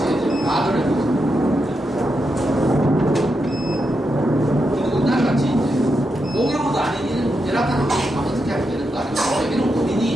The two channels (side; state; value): both; normal; correlation 0.85